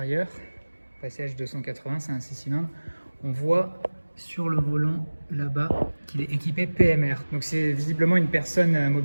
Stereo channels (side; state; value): both; inverted; correlation -1.00